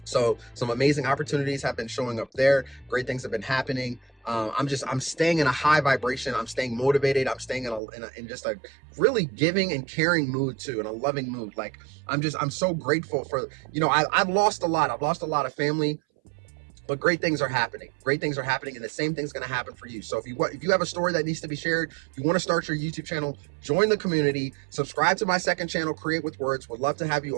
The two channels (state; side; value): drops out; left; at 7.8 s